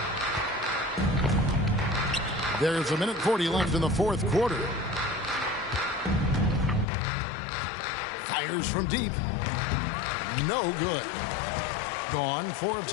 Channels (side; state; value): right; drops out; at 6.9 s